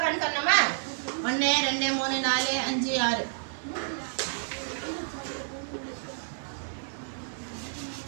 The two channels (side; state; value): left; silent; 58 dB below the other